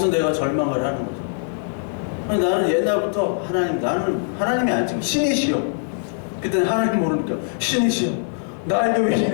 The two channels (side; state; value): right; silent; digital silence